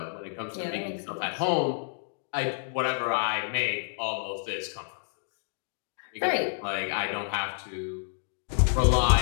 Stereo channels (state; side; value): silent; right; digital silence